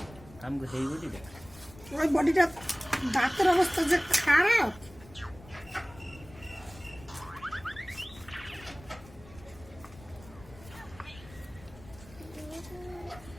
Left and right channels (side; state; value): left; noise; rumble, 20 dB below the sound